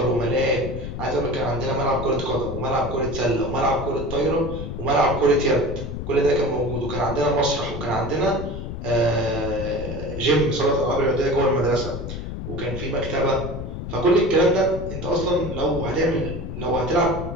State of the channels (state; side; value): noise; left; rumble, 7 dB below the sound